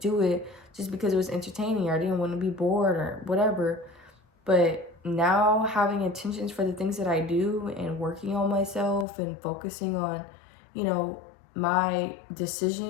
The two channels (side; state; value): right; drops out; at 9.1 s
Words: do it just because it was entertaining or I didn't want to be bored or whatever. But now having intentions for the things that I do and working on myself and focusing on, you know, my